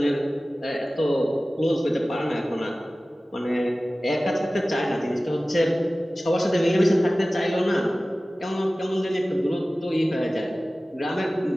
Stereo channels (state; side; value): normal; both; correlation 0.97